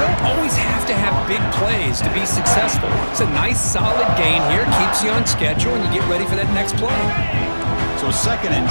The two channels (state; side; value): inverted; both; correlation -1.00